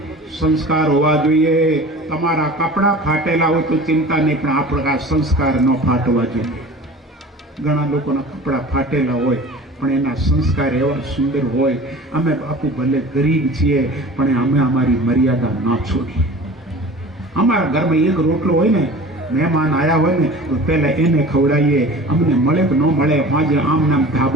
સંસ્કાર હોવા જોઈએ. તમારા કપડા ફાટેલા હોય તો ચિંતા નહીં, પણ આપણા સંસ્કાર ન ફાટવા જોઈએ. ઘણા લોકોના કપડા ફાટેલા હોય પણ એના સંસ્કાર એવા સુંદર હોય. અમે બાપુ ભલે ગરીબ છીએ પણ અમે અમારી મર્યાદા ના છોડીએ. અમારા ઘરમાં એક રોટલો હોય ને, મહેમાન આવ્યા હોય ને તો પહેલા એને ખવડાવીએ. અમને મળે કે ન મળે, આજે આમ નામ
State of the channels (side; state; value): both; normal; correlation 0.40